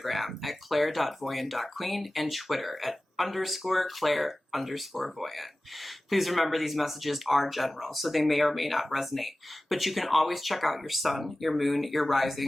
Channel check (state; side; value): normal; both; correlation 0.97